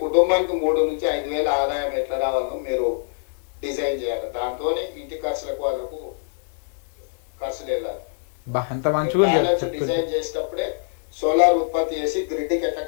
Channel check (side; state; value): right; silent; digital silence